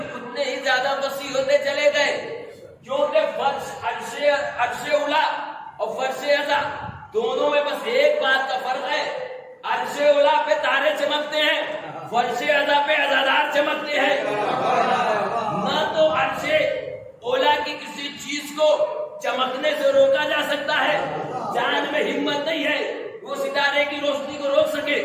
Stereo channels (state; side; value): identical; both; correlation 1.00